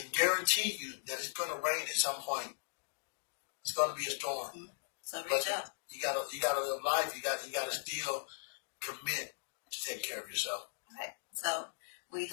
guarantee you that it's going to rain at some point. It's going to be a storm. Mm-hmm. So reach out. You gotta live life. You gotta still commit to take care of yourself. Right. So we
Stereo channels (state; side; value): silent; right; digital silence